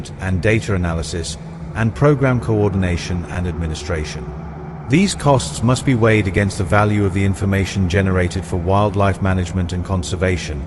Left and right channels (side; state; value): both; identical; correlation 1.00